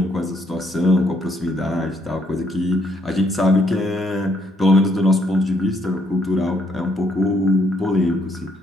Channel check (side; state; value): both; normal; correlation 0.71